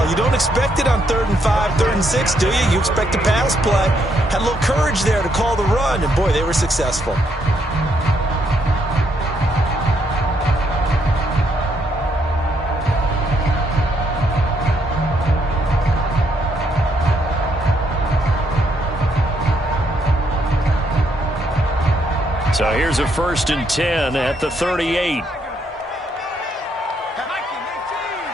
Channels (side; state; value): both; normal; correlation 0.74